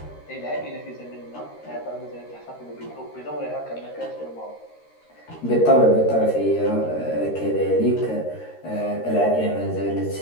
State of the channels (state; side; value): late; right; 13 ms